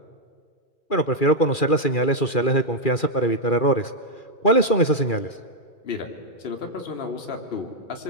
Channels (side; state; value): right; late; 2.4 ms